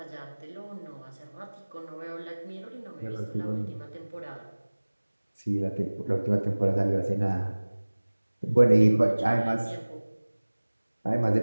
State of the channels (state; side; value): inverted; both; correlation -1.00